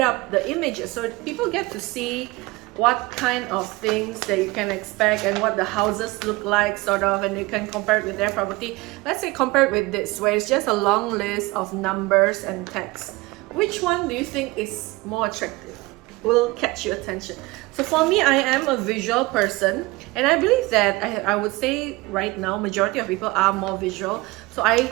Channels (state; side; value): quieter; left; 22.1 dB